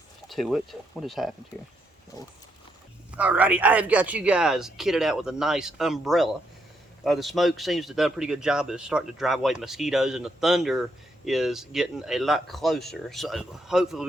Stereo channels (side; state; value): both; normal; correlation 0.76